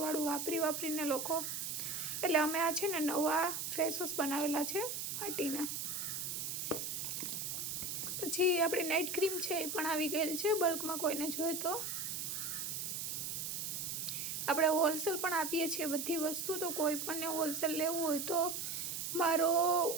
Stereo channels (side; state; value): right; noise; hiss, 3 dB below the sound